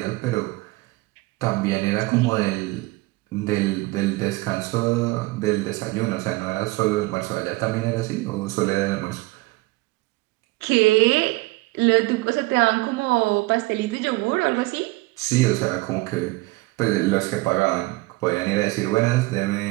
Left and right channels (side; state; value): left; quieter; 22.1 dB